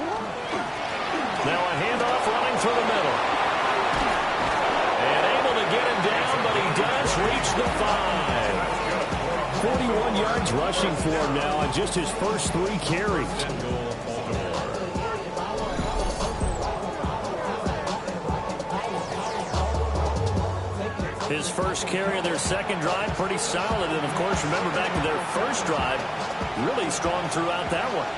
Now a handoff running through the middle. And able to get him down, but he does reach the 5. 41 yards rushing for him now on just his first 3 carries. His first carry of their second drive, pretty solid. And, of course, remember back to their first drive, really strong throughout that one.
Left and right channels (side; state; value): both; identical; correlation 1.00